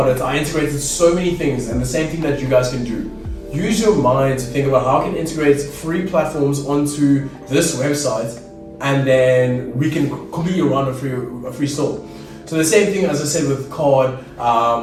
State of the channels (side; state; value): both; identical; correlation 1.00